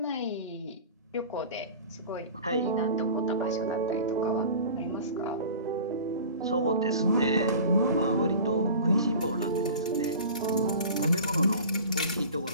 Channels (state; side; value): inverted; both; correlation -0.39